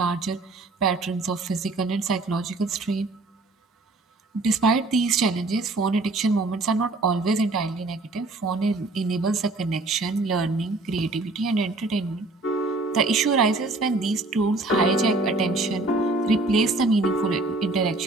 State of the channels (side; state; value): left; quieter; 3.2 dB